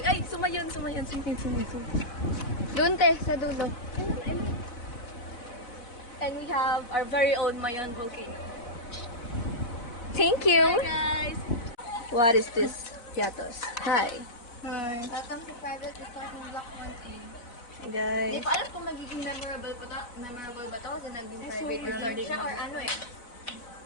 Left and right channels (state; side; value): late; right; 4.1 ms